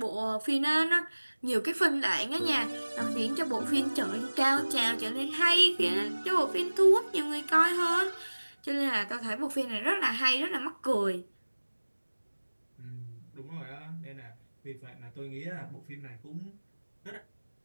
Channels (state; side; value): inverted; both; correlation -1.00